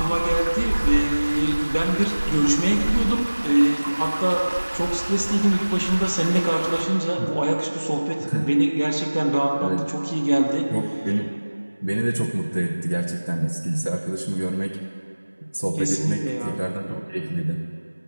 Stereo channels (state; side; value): inverted; both; correlation -1.00